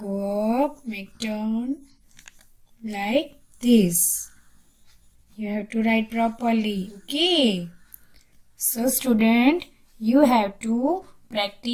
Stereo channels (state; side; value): identical; both; correlation 1.00